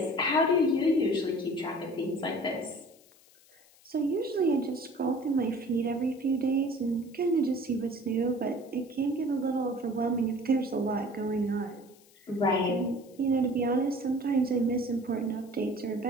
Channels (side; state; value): left; noise; hiss, 28 dB below the sound